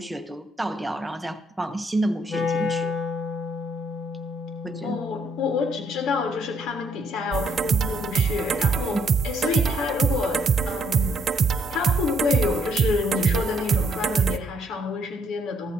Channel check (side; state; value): both; normal; correlation 0.70